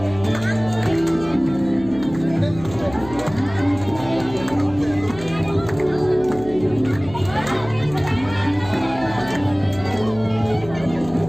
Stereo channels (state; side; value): noise; left; hum, 15 dB below the sound